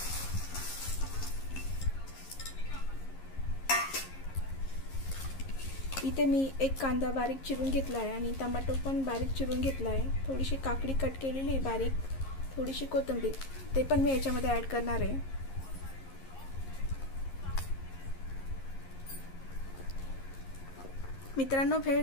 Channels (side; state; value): right; late; 11 ms